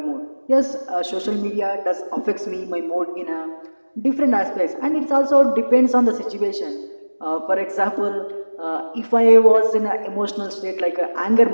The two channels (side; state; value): both; inverted; correlation -1.00